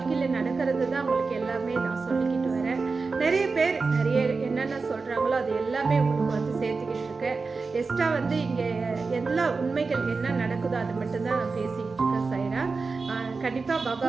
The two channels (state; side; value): quieter; left; 4.3 dB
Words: நடக்கிறது தான் உங்களுக்கு எல்லாமே நான் சொல்லிக்கிட்டு வரேன். நிறைய பேர் நிறைய என்னென்ன சொல்கிறாங்களோ அது எல்லாமே உங்களுக்கு வந்து சேர்த்துக்கிட்டு இருக்கேன். எக்ஸ்ட்ரா வந்து இங்கே எல்லா உண்மைகள் என்ன நடக்குதோ அது மட்டும்தான் நான் பேசிக்கிட்டு இருக்கேன். சைரா கண்டிப்பாக பாபா